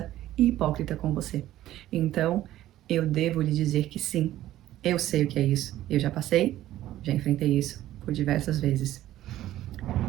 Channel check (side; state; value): left; quieter; 13.9 dB